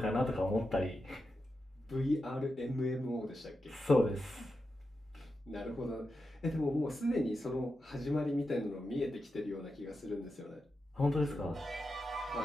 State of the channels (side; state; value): both; normal; correlation 0.88